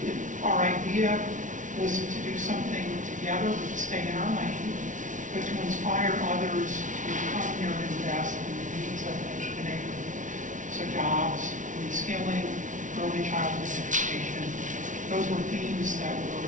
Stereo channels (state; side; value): late; left; 0.37 ms